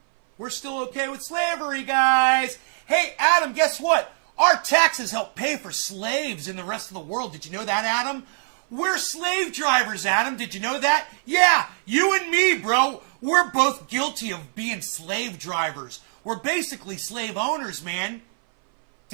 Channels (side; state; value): left; silent; 60 dB below the other